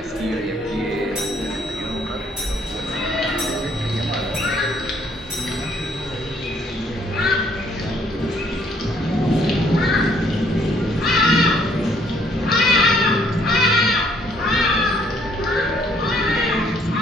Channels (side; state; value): both; normal; correlation 0.65